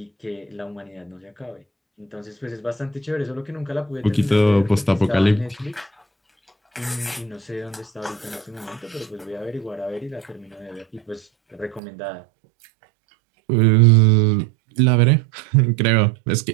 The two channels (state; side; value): drops out; left; at 11.8 s